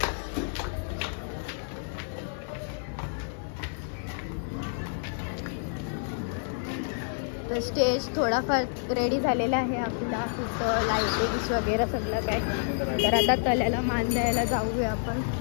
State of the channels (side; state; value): right; silent; digital silence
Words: तर स्टेज थोडाफार रेडी झालेला आहे आपला. तिथं लाईटिंग्स वगैरे सगळं काय. तर आता तल्याला मान द्यायला जाऊया आपण.